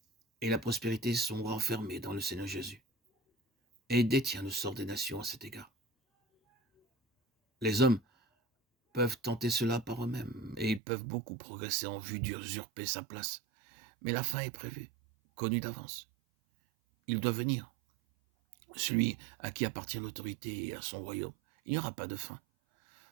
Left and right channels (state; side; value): drops out; left; at 10.8 s